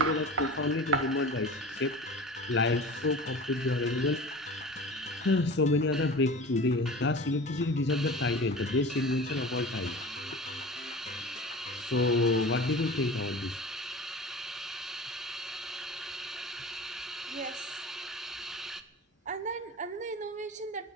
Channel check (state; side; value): normal; both; correlation 0.36